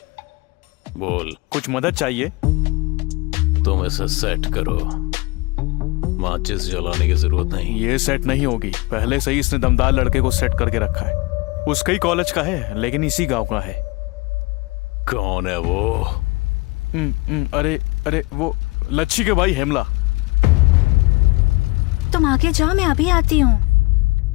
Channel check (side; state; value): right; quieter; 24.5 dB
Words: बोल। कुछ मदद चाहिए? तुम इसे सेट करो, माचिस जलाने की जरूरत नहीं। ये सेट नहीं होगी, पहले से ही इसने दमदार लड़के को सेट करके रखा है। उसका ही कॉलेज का है, लेकिन इसी गांव का है। कौन है वो? अरे वो लच्छी के भाई हेमला। तुम आगे जाओ, मैं अभी आती हूँ।